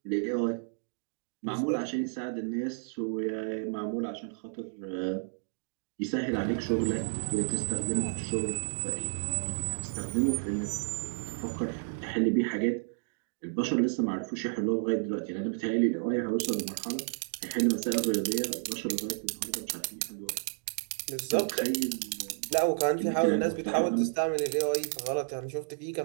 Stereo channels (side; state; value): left; silent; digital silence